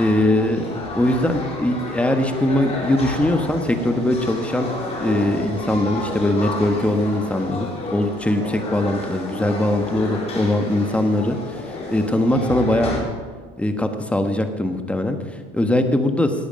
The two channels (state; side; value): normal; both; correlation 0.74